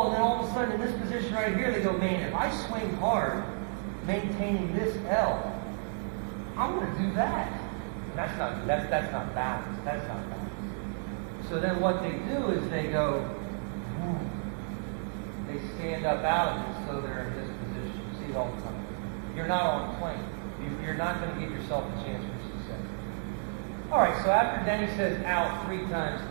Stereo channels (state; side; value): silent; left; 57 dB below the other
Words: and then all of a sudden in this position right here, they go, man, if I swing hard, maintaining this L, I'm going to do that. And that's not balance. That's not balance. So then what they do is they go, they stand up out of it, so they're in this position. You see it all the time. You're not on a plane. You're not going to give yourself a chance for success. All right, so after Denny says out 3 times